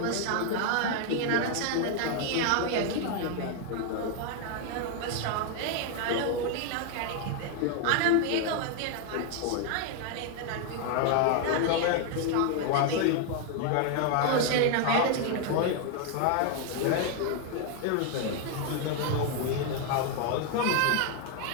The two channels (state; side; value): different; both; correlation 0.01